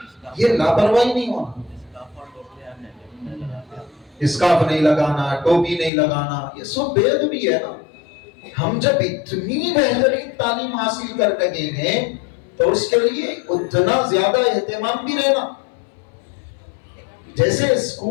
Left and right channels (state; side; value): drops out; right; at 5.9 s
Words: یہ لاپرواہی نہیں ہونا۔ اسکارف نہیں لگانا، ٹوپی نہیں لگانا، یہ سب بے ادبی ہے نا۔ ہم جب اتنی بہترین تعلیم حاصل کر لگے ہیں تو اس کے لیے اتنا زیادہ اہتمام بھی رہنا۔ جیسے